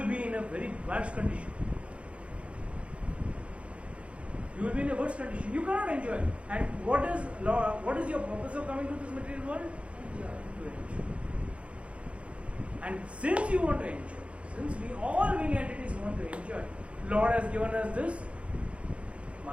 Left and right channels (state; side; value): late; left; 0.061 ms